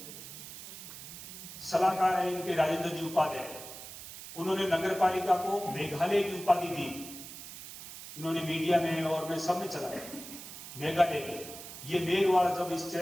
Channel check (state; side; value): noise; right; hiss, 12 dB below the sound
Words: सलाहकार हैं इनके राजेंद्र जी उपाध्याय, उन्होंने नगर पालिका को मेघालय की उपाधि दी। इन्होंने मीडिया में और मैं सब में चलाया मेघालय के। ये मेघवाल जब इस